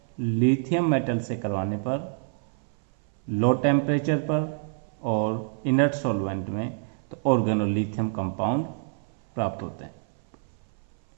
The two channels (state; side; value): silent; left; 58 dB below the other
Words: लिथियम मेटल से करवाने पर लो टेम्परेचर पर और इनर्ट सॉल्वेंट में तो ऑर्गेनोलिथियम कंपाउंड प्राप्त होते हैं।